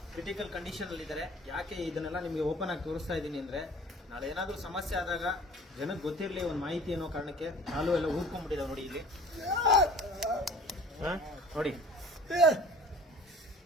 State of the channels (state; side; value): normal; both; correlation 0.47